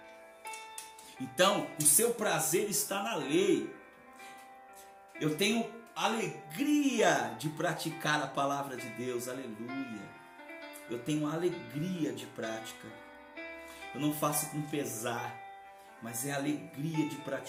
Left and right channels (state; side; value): identical; both; correlation 1.00